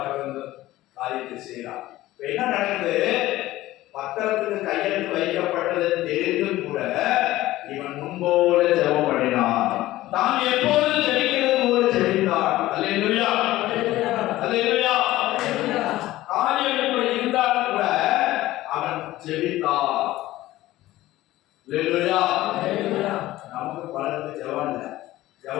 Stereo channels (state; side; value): quieter; right; 16.3 dB